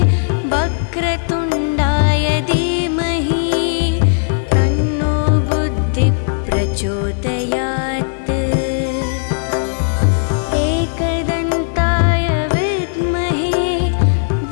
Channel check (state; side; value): silent; right; digital silence